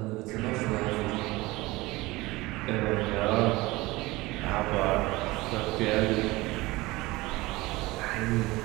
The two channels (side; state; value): left; quieter; 20.9 dB